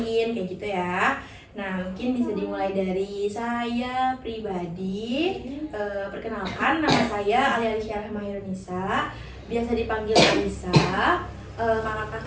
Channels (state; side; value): identical; both; correlation 1.00